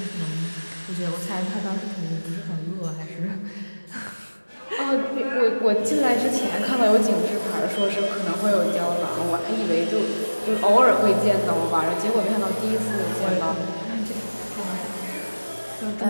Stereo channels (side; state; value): both; inverted; correlation -1.00